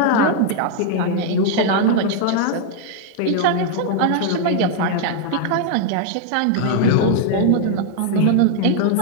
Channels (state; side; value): different; both; correlation -0.01